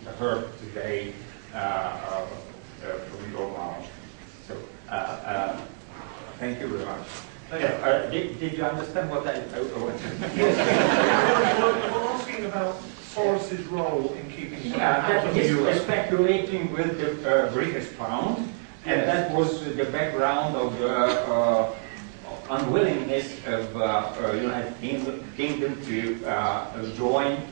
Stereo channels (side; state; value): left; silent; digital silence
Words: heard today from your mouth. So, thank you very much. Did you understand what I wanted? Yes. We're asking about Soros's role in keeping out of the euro. He's speculating with the British pound, and that was the background of the unwillingness of United Kingdom to join